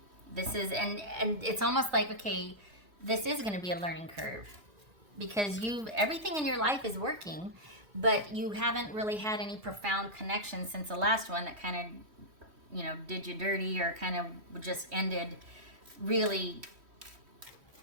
This is, and it's almost like, okay, this is going to be a learning curve because everything in your life is working, but you haven't really had any profound connection since the last one that kind of, did you dirty or kind of just ended really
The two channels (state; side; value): late; left; 3.1 ms